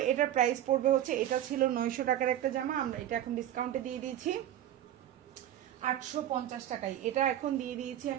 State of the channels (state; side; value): quieter; left; 11.9 dB